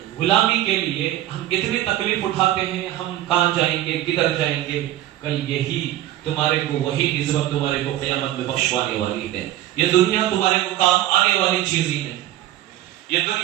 غلامی کے لیے ہم اتنی تکلیف اٹھاتے ہیں، ہم کہاں جائیں گے، کدھر جائیں گے؟ کل یہی تمہارے کو وہی نسبت تمہارے کو قیامت میں بخشوانے والی ہے۔ یہ دنیا تمہارے کو کام آنے والی چیز ہی نہیں، یہ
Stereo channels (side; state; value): left; quieter; 13.9 dB